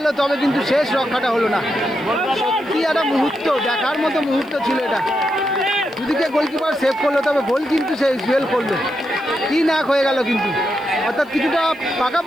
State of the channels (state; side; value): noise; left; hiss, 30 dB below the sound